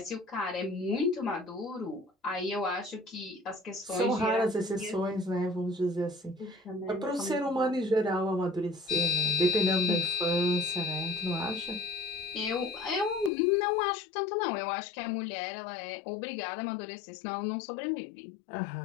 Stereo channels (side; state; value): right; drops out; at 13.3 s